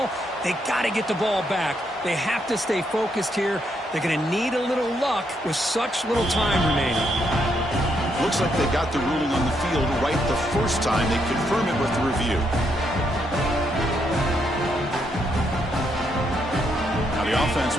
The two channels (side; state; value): both; normal; correlation 0.77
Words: they got to get the ball back. They have to stay focused here. They're going to need a little luck with such little time remaining. Looks like they got the ruling on the field right the first time. They confirm it with the review. Now the offense